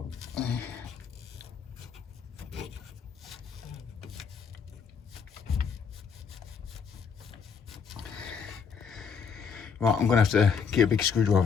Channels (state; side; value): quieter; right; 6.2 dB